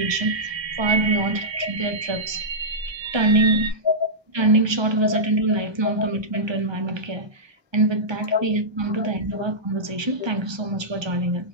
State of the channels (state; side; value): late; left; 1.2 ms